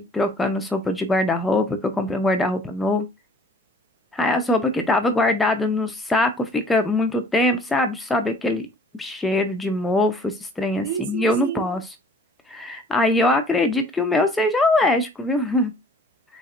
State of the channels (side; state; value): both; normal; correlation 0.53